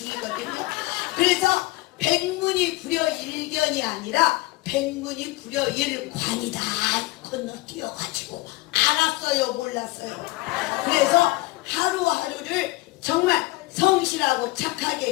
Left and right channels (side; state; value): right; quieter; 20.5 dB